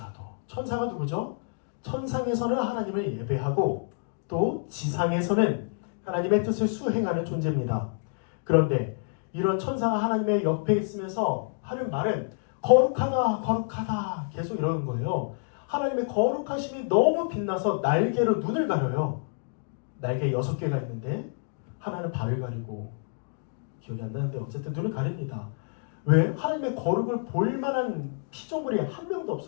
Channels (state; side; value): silent; right; digital silence